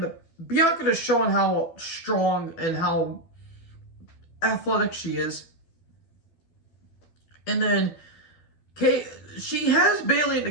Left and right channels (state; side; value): late; right; 12 ms